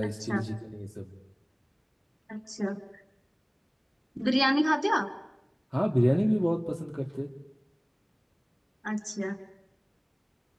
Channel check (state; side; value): identical; both; correlation 1.00